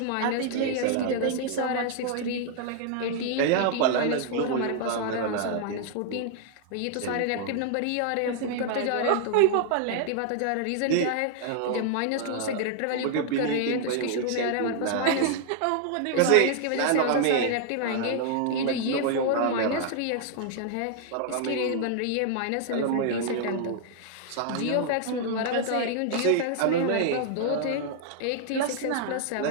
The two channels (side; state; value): both; different; correlation 0.00